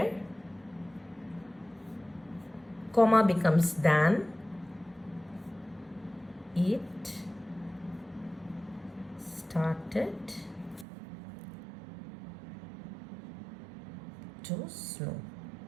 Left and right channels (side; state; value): left; drops out; at 10.9 s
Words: comma becomes than it started to snow.